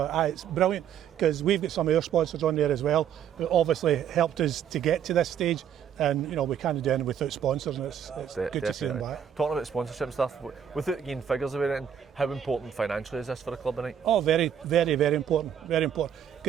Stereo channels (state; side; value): quieter; left; 8.9 dB